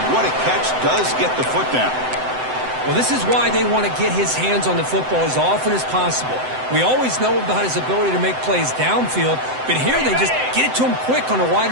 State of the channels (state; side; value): late; left; 7.8 ms